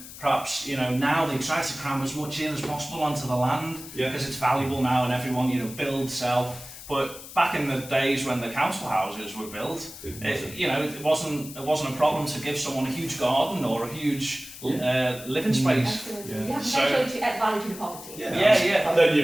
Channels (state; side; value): noise; left; hiss, 14 dB below the sound